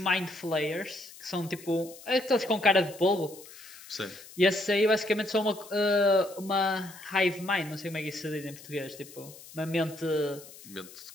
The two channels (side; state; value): left; noise; hiss, 18 dB below the sound